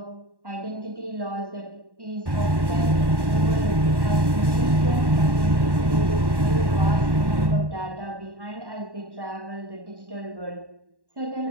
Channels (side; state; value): left; late; 1.1 ms